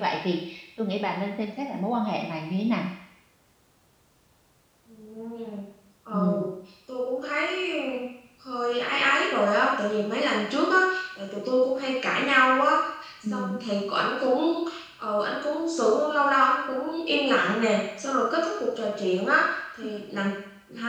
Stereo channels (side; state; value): both; identical; correlation 1.00